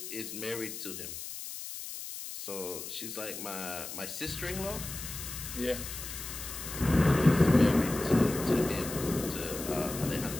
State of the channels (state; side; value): noise; left; hiss, 8 dB below the sound